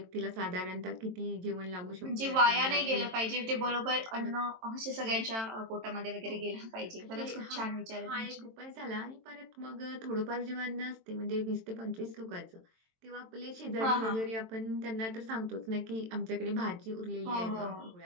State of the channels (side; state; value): left; late; 22 ms